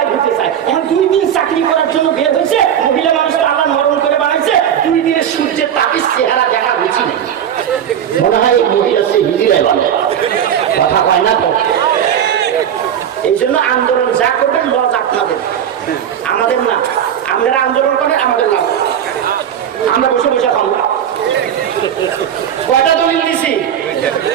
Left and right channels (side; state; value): left; quieter; 9.3 dB